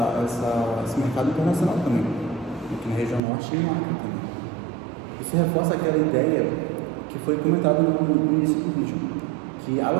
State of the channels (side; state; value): left; drops out; at 3.2 s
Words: mercado internacional também, aqui na região norte e no Acre também. Isso reforça aquela ideia que foi comentada no início do vídeo, que a